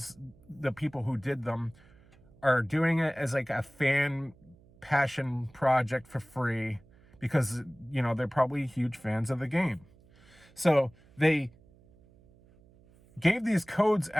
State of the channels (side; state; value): right; noise; hum, 28 dB below the sound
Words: the people who did them, are doing it as like a fan passion project for free because, you know, they're probably huge fans of the game. So they gave these codes